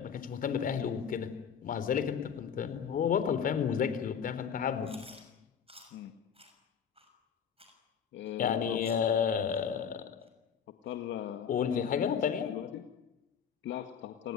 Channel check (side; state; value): right; quieter; 7.6 dB